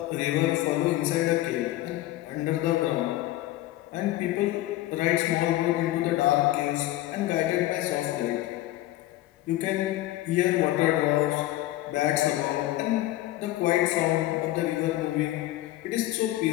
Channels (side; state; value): right; quieter; 15.9 dB